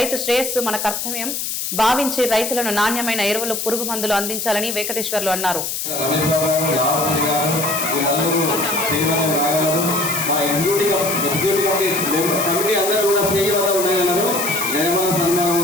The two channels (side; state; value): left; noise; hiss, 3 dB below the sound